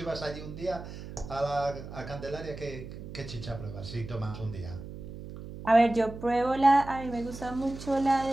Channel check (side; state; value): right; noise; hum, 11 dB below the sound